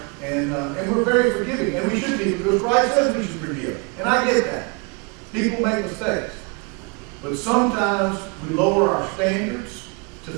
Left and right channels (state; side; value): quieter; left; 31.7 dB